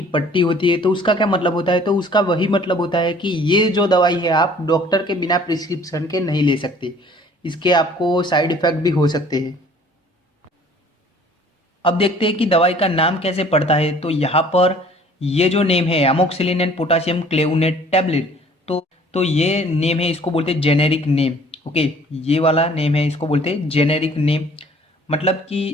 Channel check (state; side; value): normal; both; correlation 0.53